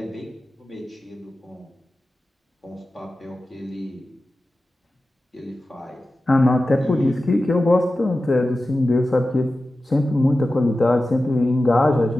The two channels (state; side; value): normal; both; correlation 0.94